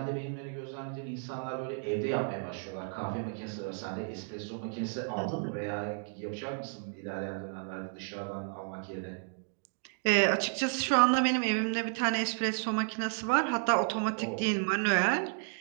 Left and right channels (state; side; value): silent; left; 56 dB below the other